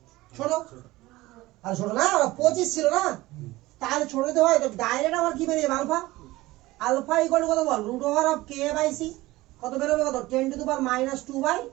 ছোট আর ছোট না 25 ছিল না তাহলে ছোট দিতে হয় তো ডাইরেক্ট আমার কি বেরিয়ে আলফা আলফা ইকুয়াল টু কত বল √K/C কত বেরোবে কত 10 to the power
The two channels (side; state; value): left; quieter; 18.8 dB